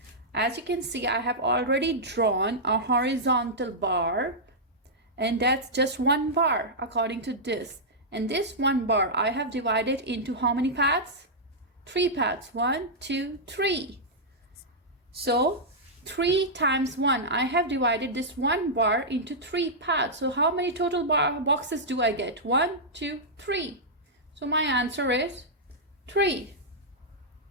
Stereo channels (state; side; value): normal; both; correlation -0.09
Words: As you can see, I have already drawn a horizontal bar, and that's just 1 bar according to this. And this 1 bar I have divided into how many parts? 3 parts. 1, 2, 3. So 3 times 1, I have divided this 1 bar into 3 parts. So how many total boxes do I get? 1, 2, 3. So my answer is 3.